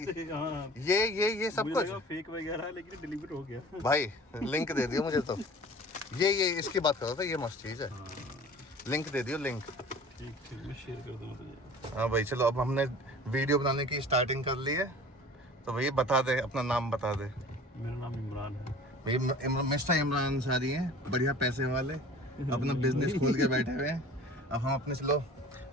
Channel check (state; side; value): normal; both; correlation 0.44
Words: हाँ। ये सब कुछ फेक वगैरह है, लेकिन डिलीवर हो गया। भाई लिंक दे दियो मुझे। तो ये इसकी बात कर रहा था, ये मस्त चीज़ है। हाँ। लिंक दे दियो, लिंक। ठीक मैं शेयर कर दूँगा तुझे। हाँ भाई चलो, अब हमने वीडियो बनाने की स्टार्टिंग कर ली है। तो भैया बता दे, अपना नाम बता दे। मेरा नाम इमरान है। मिस्टर इमरान अंसारी हैं, बढ़िया पैसे वाले, अपना बिजनेस खोल के बैठे हुए हैं। अब हम अपने चलो